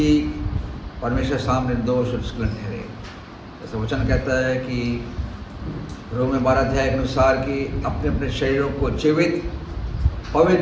परमेश्वर सामने निर्दोष और निष्कलंक ठहरे। जैसा वचन कहता है कि रोम 12 अध्याय के अनुसार कि अपने अपने शरीरों को जीवित,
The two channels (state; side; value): identical; both; correlation 1.00